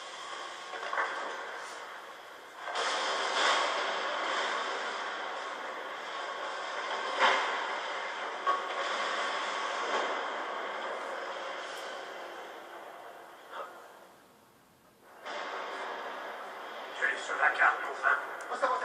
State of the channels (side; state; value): both; identical; correlation 1.00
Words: Sur la carte, enfin. Au